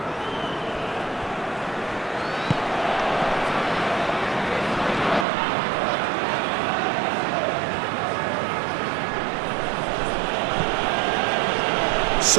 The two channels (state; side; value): drops out; left; at 5.2 s